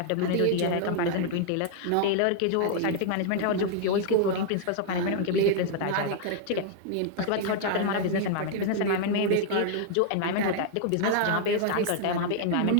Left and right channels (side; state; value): both; different; correlation -0.01